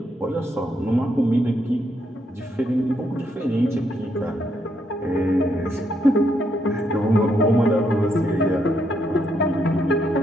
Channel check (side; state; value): both; normal; correlation 0.76